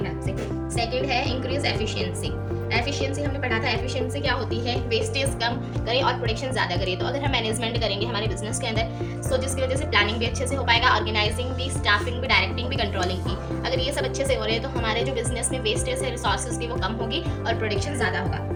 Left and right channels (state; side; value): identical; both; correlation 1.00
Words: हेल्प से। सेकंड है इंक्रीज एफिशिएंसी। एफिशिएंसी हमने पढ़ा था, एफिशिएंसी क्या होती है, वेस्टेज कम करें और प्रोडक्शन ज़्यादा करें। तो अगर हम मैनेजमेंट करेंगे हमारे बिजनेस के अंदर, सो जिसकी वजह से प्लानिंग भी अच्छे से हो पाएगा, ऑर्गेनाइजिंग भी, स्टाफिंग भी, डायरेक्टिंग भी, कंट्रोलिंग भी। अगर ये सब अच्छे से हो रहे हैं तो हमारे जो बिजनेस में वेस्टेज है रिसोर्सेज की वो कम होगी और प्रोडक्शन ज़्यादा होगा।